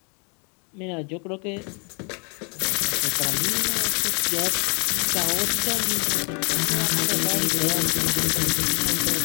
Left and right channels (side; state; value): right; quieter; 36.5 dB